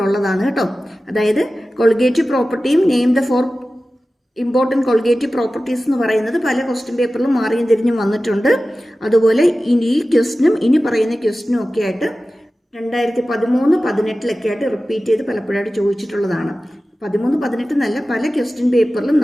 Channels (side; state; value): both; normal; correlation 0.95